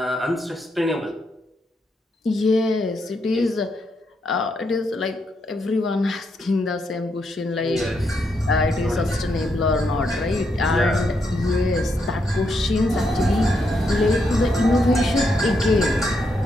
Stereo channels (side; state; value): both; normal; correlation 0.80